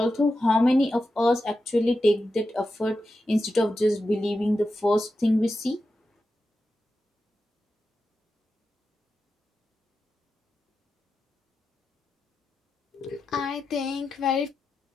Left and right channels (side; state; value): both; normal; correlation 0.90